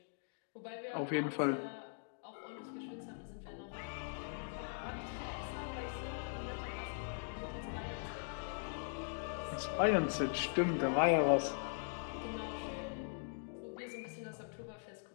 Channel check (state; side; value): silent; right; digital silence